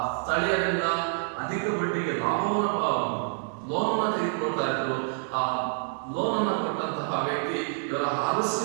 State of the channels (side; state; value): left; silent; 60 dB below the other